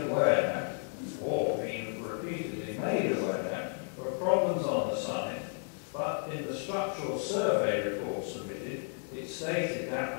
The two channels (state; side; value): silent; right; 56 dB below the other